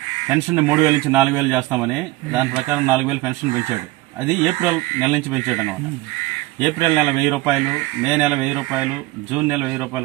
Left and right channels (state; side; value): quieter; left; 19.6 dB